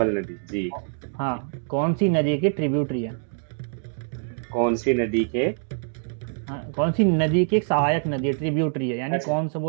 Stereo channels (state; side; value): silent; left; digital silence